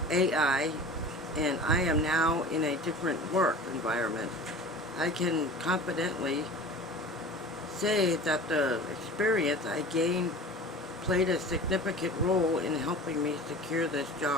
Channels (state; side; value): normal; both; correlation 0.38